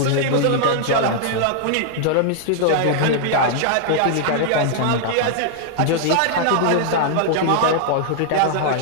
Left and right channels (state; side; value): different; both; correlation -0.01